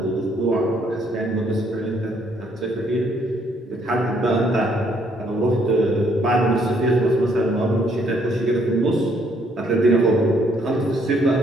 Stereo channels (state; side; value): normal; both; correlation 0.68